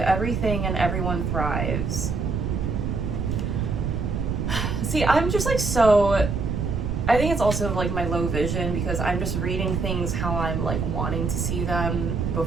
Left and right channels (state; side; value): noise; right; rumble, 1 dB below the sound